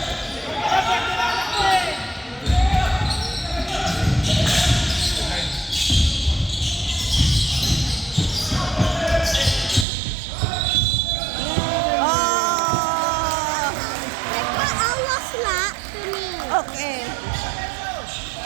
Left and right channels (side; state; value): left; drops out; at 9.9 s